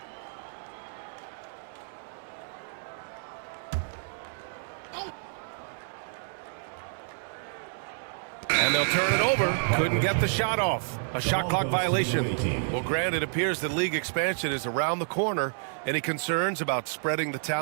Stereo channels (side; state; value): left; silent; 58 dB below the other